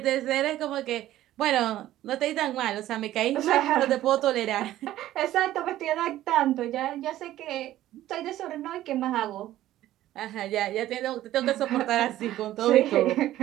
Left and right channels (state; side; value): quieter; left; 14.0 dB